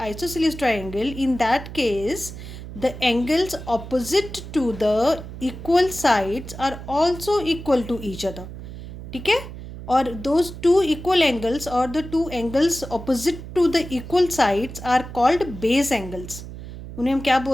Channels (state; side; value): noise; right; hum, 12 dB below the sound